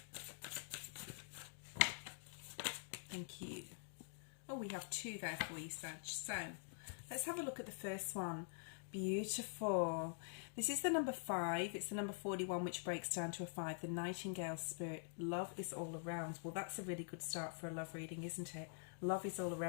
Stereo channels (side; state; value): right; silent; digital silence